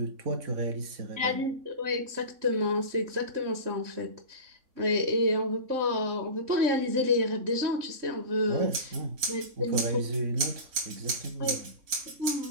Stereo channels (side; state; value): left; late; 3.6 ms